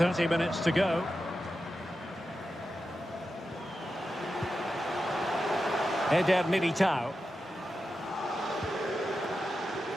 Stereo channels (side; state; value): both; normal; correlation 0.90